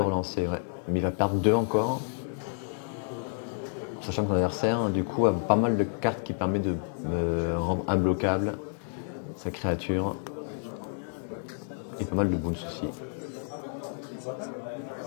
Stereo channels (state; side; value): silent; right; digital silence